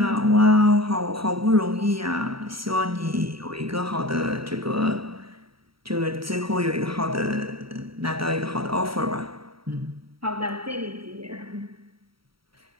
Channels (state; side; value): late; left; 0.75 ms